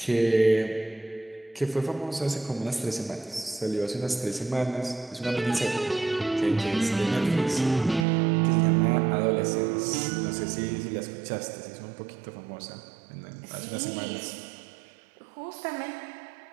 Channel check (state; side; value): drops out; left; at 8.1 s